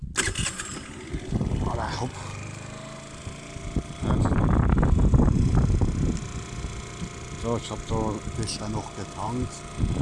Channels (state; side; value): identical; both; correlation 1.00